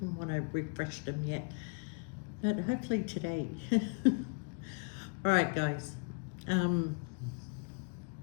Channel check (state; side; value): quieter; right; 35.6 dB